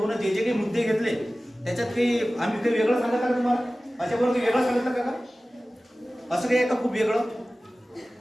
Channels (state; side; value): normal; both; correlation 0.97